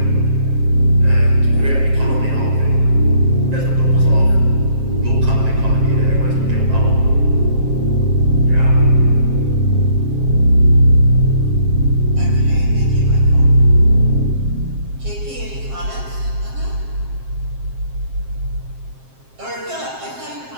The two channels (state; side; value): late; left; 7.5 ms